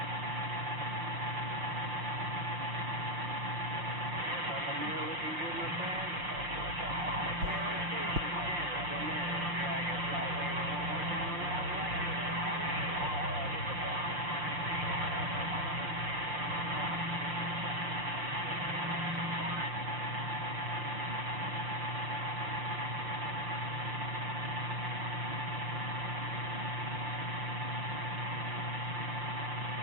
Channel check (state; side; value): late; left; 6.7 ms